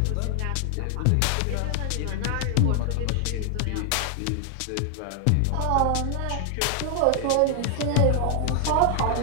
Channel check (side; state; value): both; different; correlation 0.00